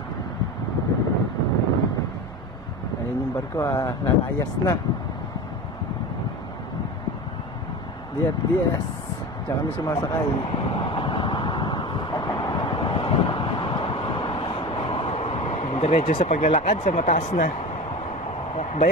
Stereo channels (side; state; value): right; noise; rumble, 20 dB below the sound